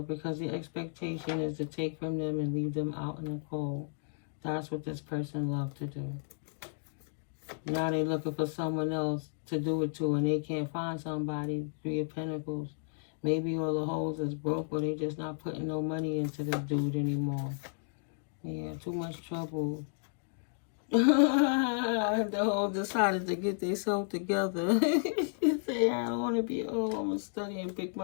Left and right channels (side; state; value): right; silent; digital silence